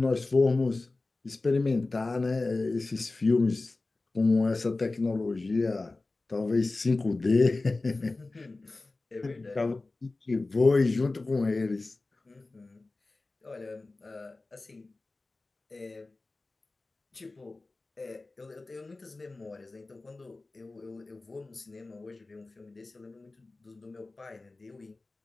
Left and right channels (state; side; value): quieter; right; 3.3 dB